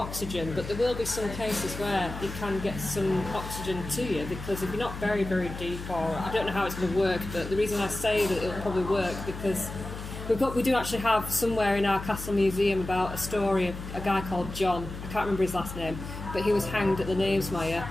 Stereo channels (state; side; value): noise; left; hum, 9 dB below the sound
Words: but there will be some cases where you can get some oxygen to you, because if you're not very, very deep, or I don't know how it's going to work, but the reason I say that it'll probably work because we do actually have somewhere in our castle museum about a story of a guy called John. I can't remember his last name, but he was hanged at the Knavesmire.